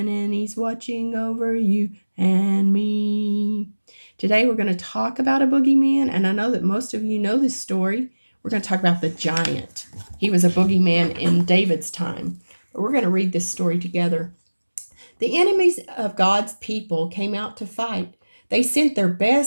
and he's watching over you and me. Today we're going to talk about a boogeyman, and I know that most of you know this story. We're going to talk about the giant. He was a boogeyman in David's time. But we're going to read this story together. The enemies of God's people came out to fight. They sent their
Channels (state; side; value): inverted; both; correlation -1.00